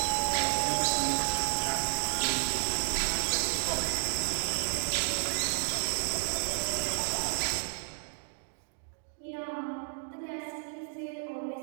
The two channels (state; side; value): silent; left; digital silence